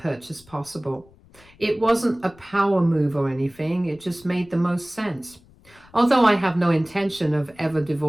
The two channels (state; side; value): noise; left; rumble, 27 dB below the sound